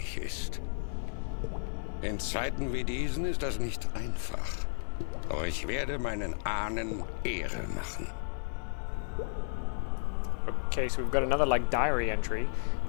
ist. In Zeiten wie diesen ist das nicht einfach. Doch ich werde meinen Ahnen Ehre machen. Okay, so we've got another like diary entry.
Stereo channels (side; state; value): right; silent; digital silence